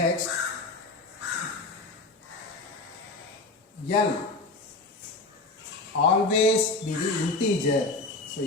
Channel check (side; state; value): right; quieter; 3.2 dB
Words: L always be the integer. So